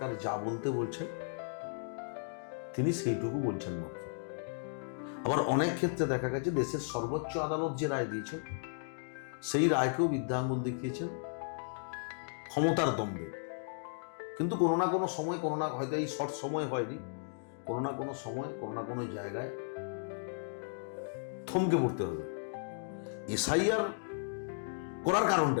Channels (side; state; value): right; silent; digital silence